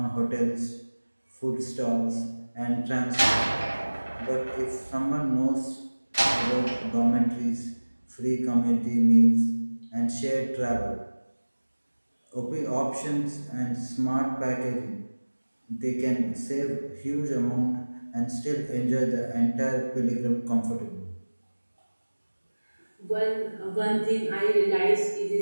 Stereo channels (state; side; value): inverted; both; correlation -1.00